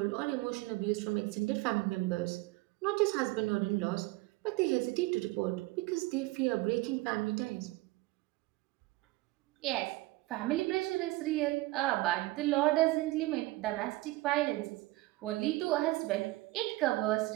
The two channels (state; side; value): quieter; left; 19.9 dB